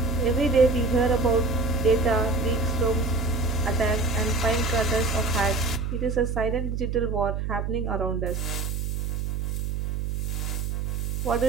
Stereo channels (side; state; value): right; noise; hum, 2 dB below the sound